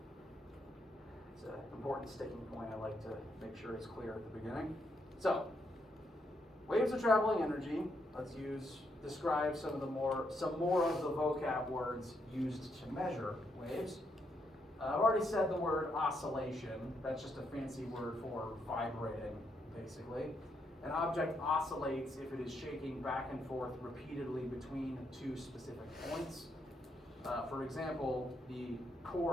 It's an important sticking point I like to make sure is clear at the beginning. So, waves are traveling energy. Let's describe some more of the vocab words used to measure waves. I've already said the word oscillation. That's just a fancy word for vibrating, basically. An object oscillates if it is shaking back and forth repeatedly between two specific points. For example, the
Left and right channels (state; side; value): normal; both; correlation 0.78